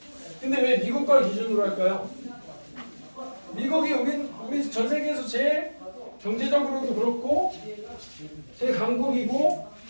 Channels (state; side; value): inverted; both; correlation -1.00